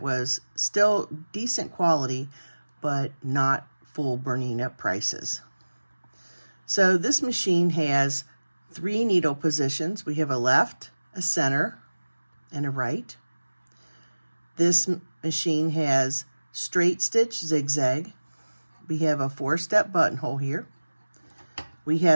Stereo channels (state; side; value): inverted; both; correlation -1.00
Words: was still decent quality, but not full Bernina prices. So this machine has 3 needle positions. We have a left, a center, and a right. This machine has straight stitch zigzag. We have a 4-step buttonhole here. We